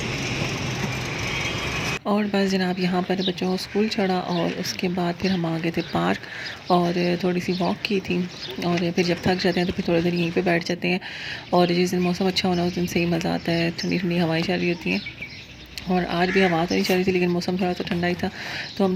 और बस जनाब, यहाँ पर बच्चों को स्कूल छोड़ा और उसके बाद फिर हम आ गए थे पार्क और थोड़ी सी वॉक की थी। और फिर जब थक जाते हैं तो फिर थोड़ी देर यहीं पे बैठ जाते हैं। और जिस दिन मौसम अच्छा होना उस दिन से ही मज़ा आता है, ठंडी ठंडी हवाएं चल रही होती हैं। और आज भी हवा तो नहीं चल रही थी, लेकिन मौसम थोड़ा सा ठंडा ही था। तो हम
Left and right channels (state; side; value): identical; both; correlation 1.00